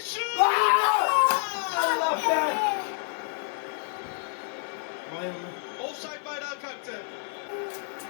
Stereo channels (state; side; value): silent; right; 59 dB below the other